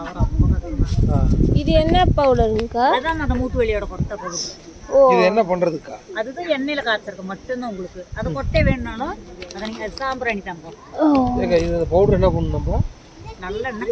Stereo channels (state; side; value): identical; both; correlation 1.00